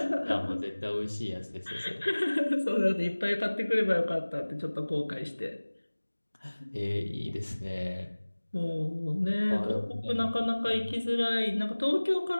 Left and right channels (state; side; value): inverted; both; correlation -1.00